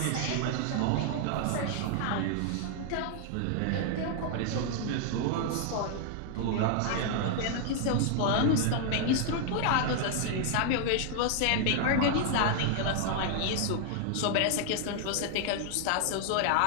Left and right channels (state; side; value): different; both; correlation 0.00